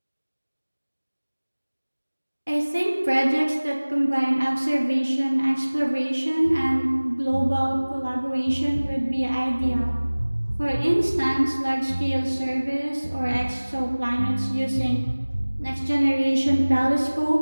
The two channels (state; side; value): inverted; both; correlation -1.00